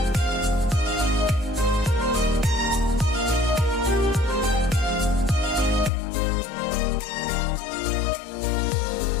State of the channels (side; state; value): right; drops out; at 5.9 s